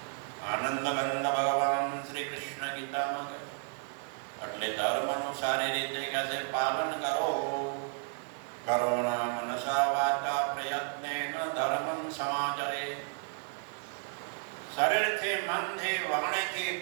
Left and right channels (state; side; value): silent; left; 56 dB below the other